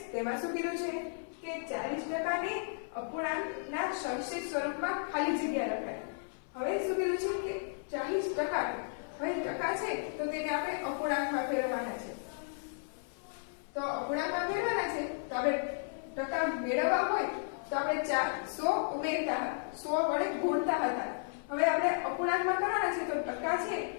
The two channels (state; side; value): silent; right; 55 dB below the other